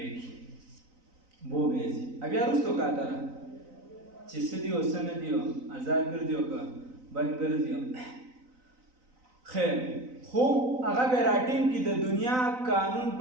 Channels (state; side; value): late; left; 3.9 ms